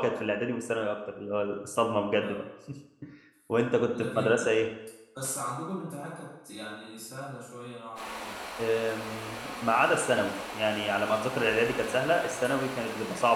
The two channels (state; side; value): identical; both; correlation 1.00